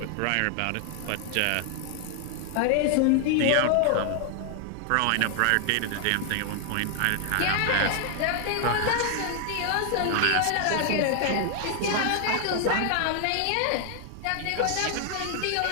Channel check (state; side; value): different; both; correlation 0.00